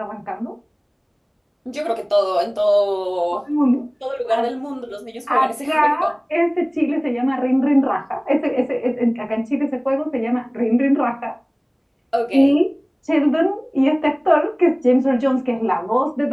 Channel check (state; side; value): identical; both; correlation 1.00